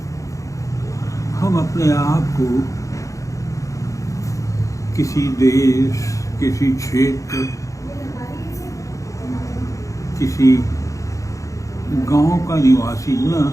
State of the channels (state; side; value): late; right; 0.15 ms